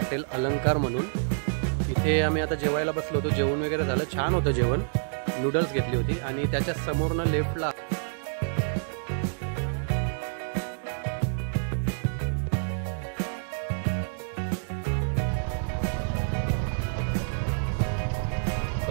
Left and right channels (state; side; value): silent; left; digital silence